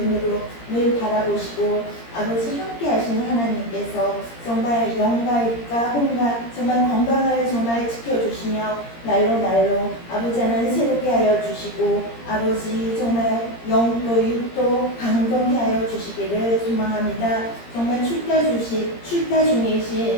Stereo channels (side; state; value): right; late; 17 ms